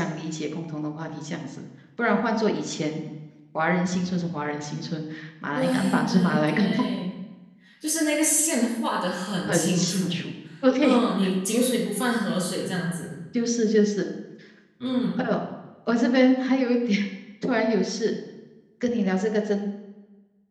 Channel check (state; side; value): identical; both; correlation 1.00